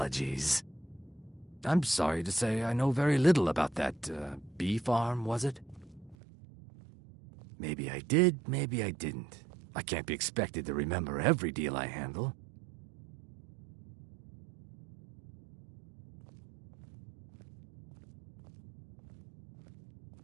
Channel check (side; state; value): left; drops out; at 6.2 s